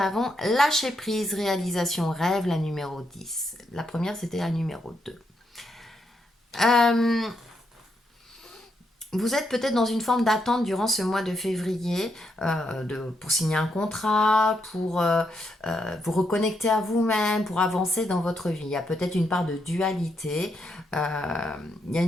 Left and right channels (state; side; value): normal; both; correlation 0.79